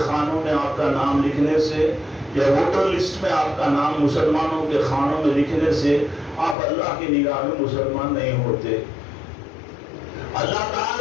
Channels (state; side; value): drops out; right; at 6.6 s